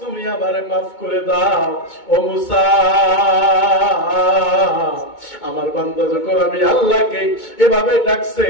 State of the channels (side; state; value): right; late; 2.2 ms